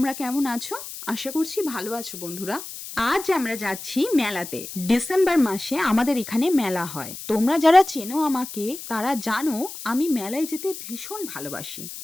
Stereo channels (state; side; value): noise; left; hiss, 11 dB below the sound